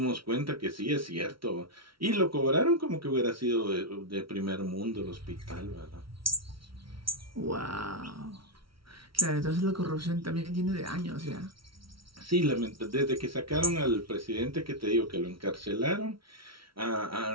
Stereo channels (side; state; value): left; late; 0.75 ms